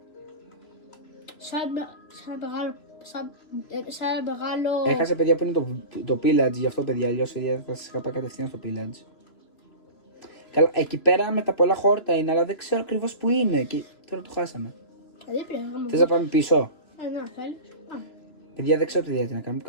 Σαν μεγάλο... Έχασε παιδιά που είναι το Pillage, γι' αυτό παιδιά, αλλιώς θα σας είχα πάει κατευθείαν στο Pillage. Καλά, εκεί πέρα με τα πολλά χόρτα είναι, αλλά δεν ξέρω ακριβώς που είναι και τώρα το χάσαμε. Θες να πάμε πίσω? Ναι, θέλεις. Παιδιά, δεν ξέρω τι διέτη να κάνουμε.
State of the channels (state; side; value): late; right; 3.0 ms